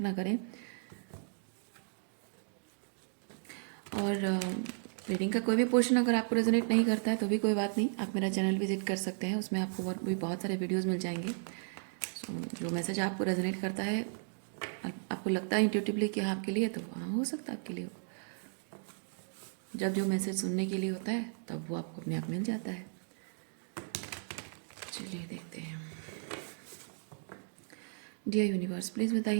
ना करें। और रीडिंग का कोई भी पोर्शन अगर आपको रेजोनेट नहीं करता है तो भी कोई बात नहीं, आप मेरा चैनल विजिट कर सकते हैं। उसमें आपको और भी बहुत सारे वीडियोस मिल जाएंगे। सो जो मैसेज आपको रेजोनेट करता है, आपको लगता है इंट्यूटिवली कि हाँ आपके लिए, तो हाँ हो सकता है आपके लिए हो। जब जो मैसेज सुनने के लिए होता है तब वो आपको अपने आप मिल जाता है। चलिए देखते हैं। डियर यूनिवर्स, प्लीज़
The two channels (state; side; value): silent; left; digital silence